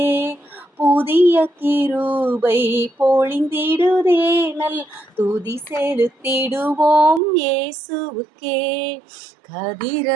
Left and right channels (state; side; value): drops out; left; at 7.2 s